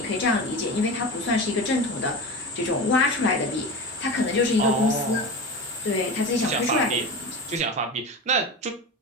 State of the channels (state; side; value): normal; both; correlation 0.27